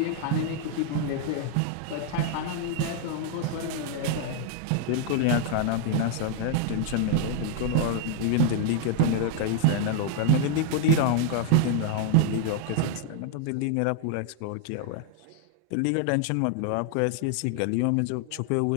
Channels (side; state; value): both; different; correlation 0.00